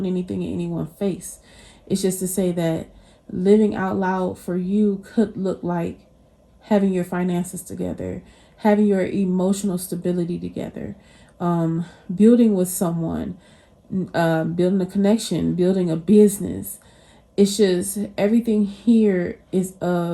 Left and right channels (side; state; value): both; identical; correlation 1.00